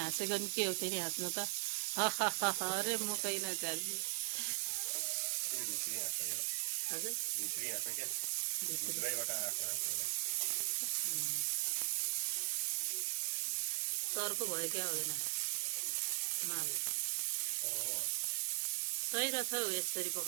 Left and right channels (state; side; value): silent; left; digital silence